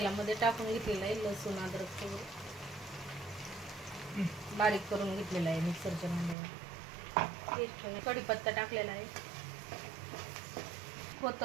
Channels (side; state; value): left; drops out; at 6.4 s